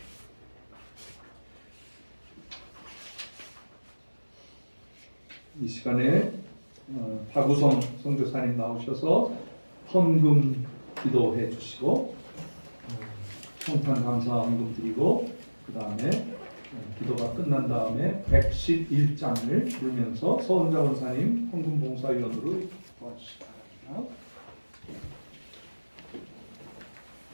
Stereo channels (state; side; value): inverted; both; correlation -1.00